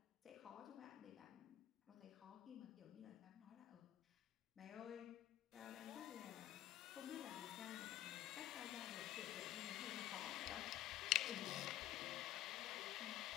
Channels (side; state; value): right; quieter; 13.4 dB